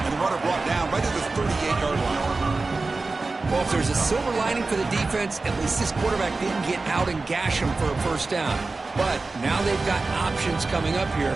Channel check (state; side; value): quieter; left; 3.6 dB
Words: the runner brought down right at the 38-yard line. Well, if there's a silver lining for the defense, at least this quarterback didn't get out and gash him for a first down. But now they've got options coming up here.